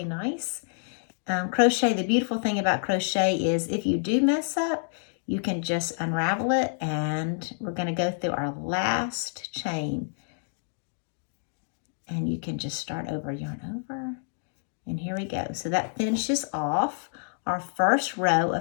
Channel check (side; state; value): right; silent; digital silence